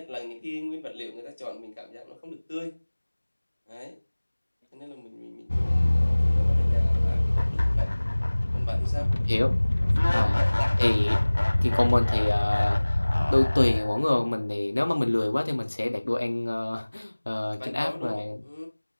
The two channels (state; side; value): inverted; both; correlation -1.00